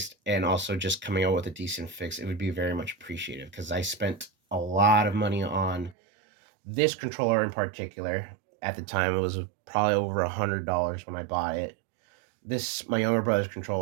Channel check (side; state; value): left; drops out; at 6.0 s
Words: and also just coming out with a decent fix, it would be very much appreciated because I spent a lot of money on this controller in particular. At the time, it was probably over $100 when I bought it. This my younger brother's